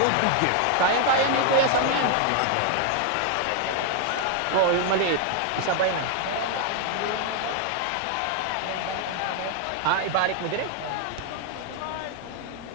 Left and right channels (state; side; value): different; both; correlation 0.00